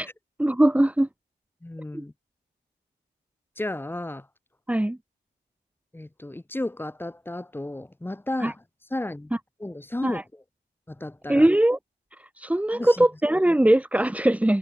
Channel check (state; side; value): normal; both; correlation 0.97